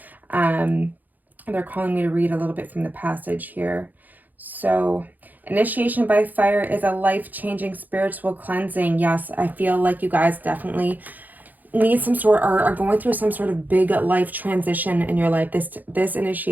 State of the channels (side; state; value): left; late; 0.083 ms